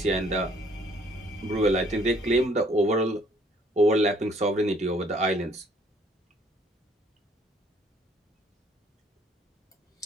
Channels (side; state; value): both; normal; correlation 0.61